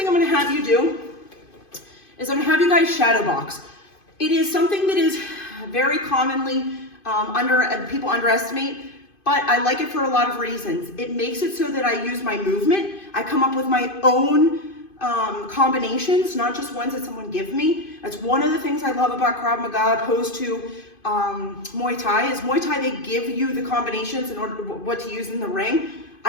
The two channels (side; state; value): right; late; 2.5 ms